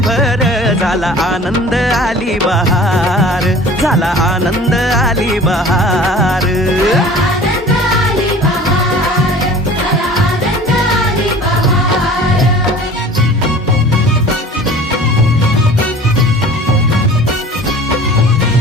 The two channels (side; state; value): both; normal; correlation 0.44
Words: झाला आनंद आली बहार, झाला आनंद आली बहार.